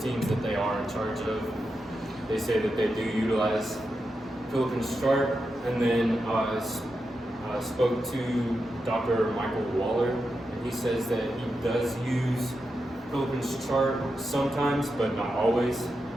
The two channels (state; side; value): normal; both; correlation 0.88